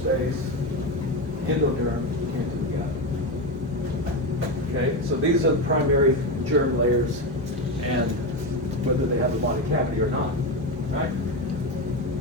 endoderm, into the gut. Okay, so these are the primary germ layers, and whether they have a body cavity or not, right?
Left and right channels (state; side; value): normal; both; correlation 0.15